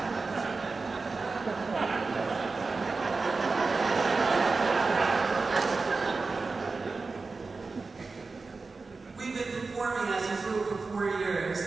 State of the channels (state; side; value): quieter; left; 4.0 dB